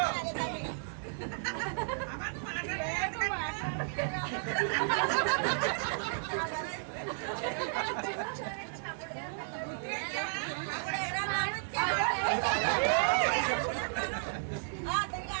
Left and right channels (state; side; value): silent; left; digital silence